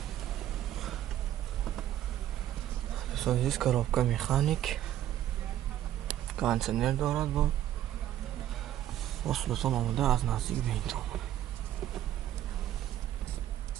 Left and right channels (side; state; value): left; quieter; 12.3 dB